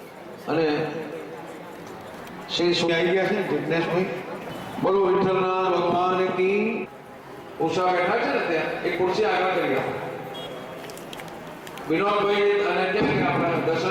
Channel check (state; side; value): identical; both; correlation 1.00